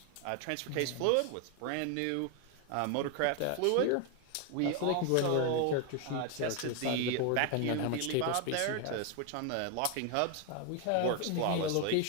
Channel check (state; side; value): different; both; correlation 0.01